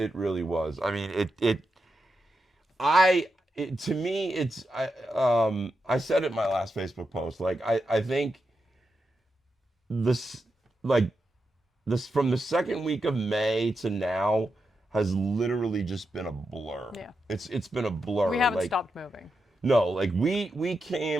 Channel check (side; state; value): both; normal; correlation 0.87